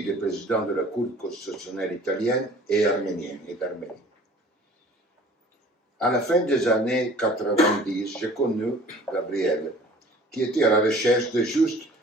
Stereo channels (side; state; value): both; normal; correlation 0.48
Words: des présidents de la Cour constitutionnelle italienne et arménienne et d'Arménie. À la fin des années 90, j'ai connu Gabriel, qui était à la recherche de juste